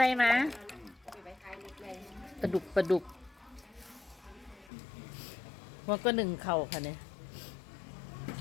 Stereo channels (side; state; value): right; drops out; at 4.7 s